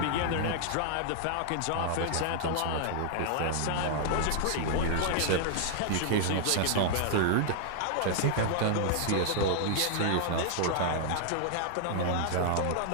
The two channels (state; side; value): different; both; correlation -0.01